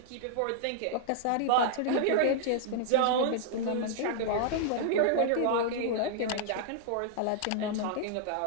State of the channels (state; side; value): different; both; correlation -0.01